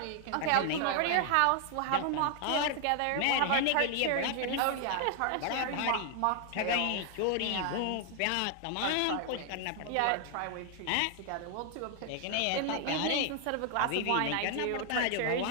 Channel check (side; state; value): both; different; correlation 0.00